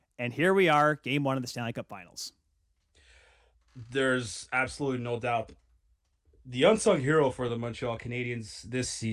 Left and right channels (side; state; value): both; identical; correlation 1.00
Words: And here we are, Game 1 of the Stanley Cup Finals. There's absolutely no doubt. The unsung hero for the Montreal Canadiens this